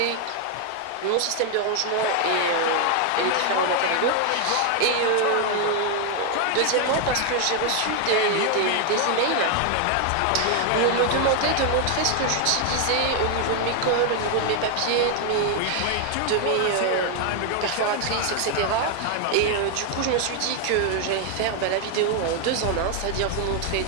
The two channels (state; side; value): different; both; correlation 0.00